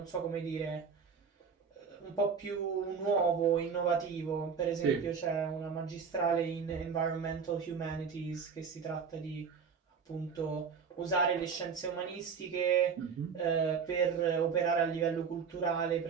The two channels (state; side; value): quieter; left; 6.1 dB